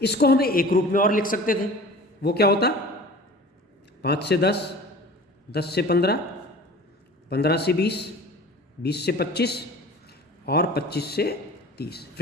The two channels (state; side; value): normal; both; correlation 0.41